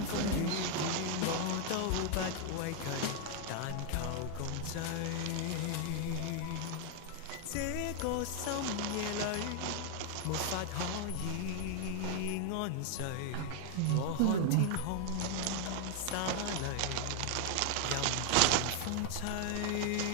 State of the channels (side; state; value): both; different; correlation 0.00